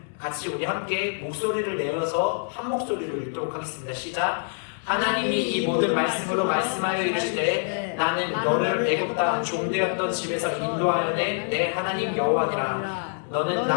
같이 우리 함께 목소리를 내어서 한 목소리로 읽도록 하겠습니다. 시작. 하나님이 이 모든 말씀으로 말씀하여 이르시되 나는 너를 애굽 땅 종되었던 집에서 인도하여 낸 내 하나님 여호와니라. 너는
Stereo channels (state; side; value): silent; right; 61 dB below the other